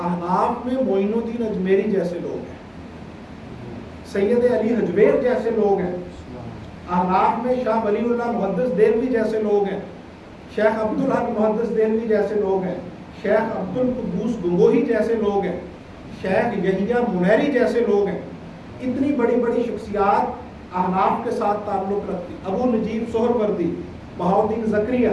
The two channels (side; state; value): both; identical; correlation 1.00